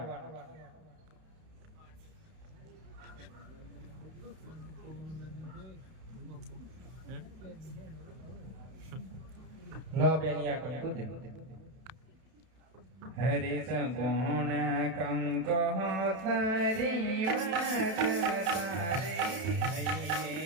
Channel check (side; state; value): left; late; 31 ms